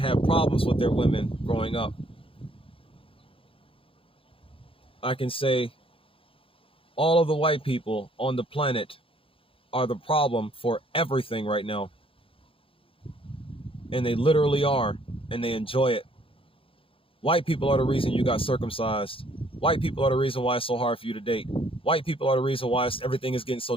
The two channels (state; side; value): late; right; 0.26 ms